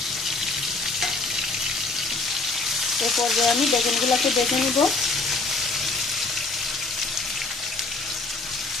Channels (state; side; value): quieter; right; 3.6 dB